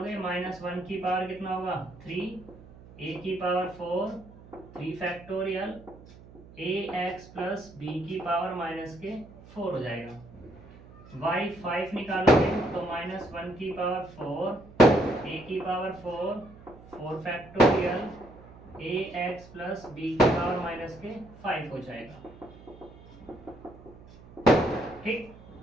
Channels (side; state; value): right; noise; hum, 20 dB below the sound